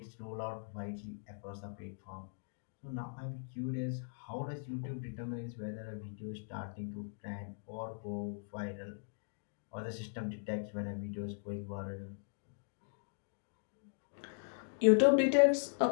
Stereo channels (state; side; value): silent; right; digital silence